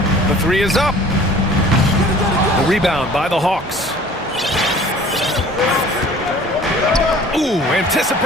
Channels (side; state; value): both; normal; correlation 0.49